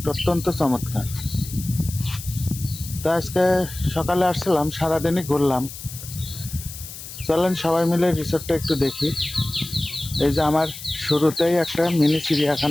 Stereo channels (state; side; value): noise; left; hiss, 12 dB below the sound